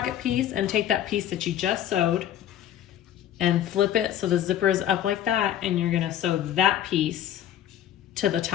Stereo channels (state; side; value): quieter; right; 11.2 dB